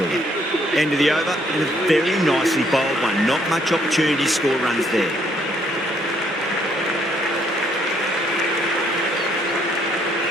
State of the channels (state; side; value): normal; both; correlation 0.68